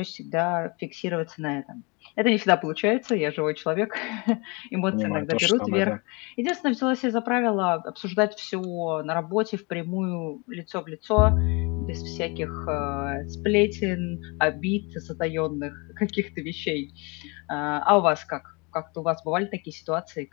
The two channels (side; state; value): right; quieter; 29.2 dB